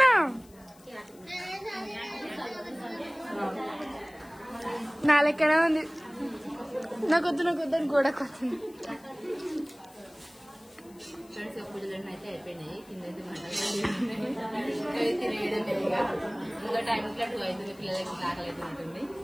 నా లెక్కనే ఉంది. నాకొద్దు అని గోడ కొత్తుంది. ఫ్రెండ్స్ పూజలన్నీ అయితే అయిపోయినాయి. కింద తినేయడం లేదుగా. ఇంకా టైం ఇట్లా 2 అవుతుంది. పిల్లలకి ఆకలి అయితే ఉంటుంది.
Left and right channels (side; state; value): left; noise; hiss, 26 dB below the sound